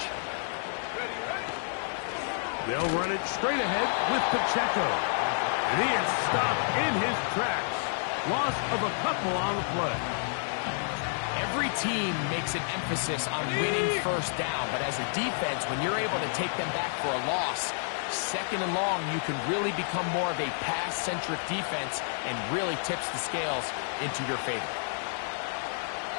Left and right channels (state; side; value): silent; right; digital silence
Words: They'll run it straight ahead with Pacheco. And he is stopped in his tracks. Loss of a couple on the play. Every team makes an emphasis on winning 1st down, but as a defense, when you're able to take them back for a loss, 2nd and long, you can really become more of a pass-centric defense and really tips the scales into your favor.